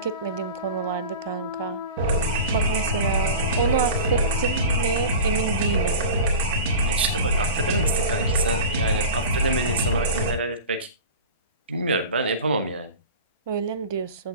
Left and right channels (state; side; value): inverted; both; correlation -0.34